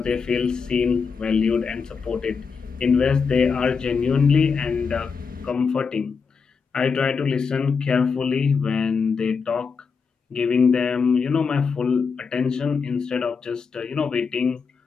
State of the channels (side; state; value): right; quieter; 5.5 dB